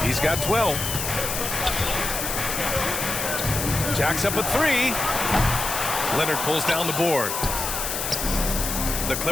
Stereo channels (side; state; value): left; noise; hiss, 3 dB below the sound